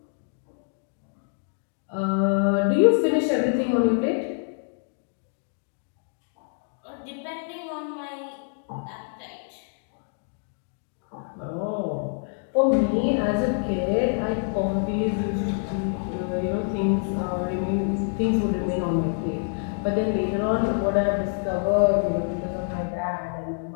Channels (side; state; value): right; silent; 61 dB below the other